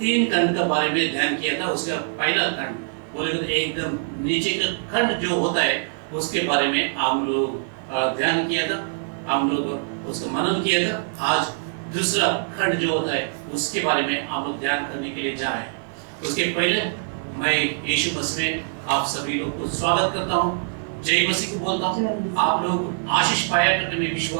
खंड के बारे में ध्यान किया था। उसका पहला खंड बोले तो एकदम नीचे का खंड जो होता है उसके बारे में हम लोग ध्यान किया था, हम लोग उसका मनन किया था। आज दूसरा खंड जो होता है उसके बारे में हम लोग ध्यान करने के लिए जा रहे हैं। उसके पहले मैं यीशु मसीह में आप सभी लोग को स्वागत करता हूँ, जय मसीह को बोलता हूँ। आप लोग आशीष पाया करके मैं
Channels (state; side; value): silent; left; digital silence